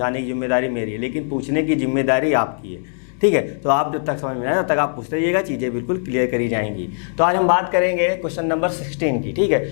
की जिम्मेदारी मेरी है, लेकिन पूछने की जिम्मेदारी आपकी है, ठीक है। तो आप जब तक समझ में आए तब तक आप पूछते रहिएगा, चीज़ें बिल्कुल क्लियर करी जाएंगी। तो आज हम बात करेंगे क्वेश्चन नंबर 16 की, ठीक है।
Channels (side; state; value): right; silent; digital silence